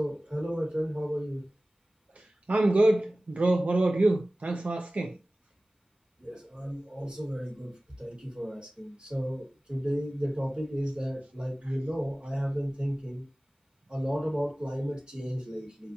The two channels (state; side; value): normal; both; correlation 0.97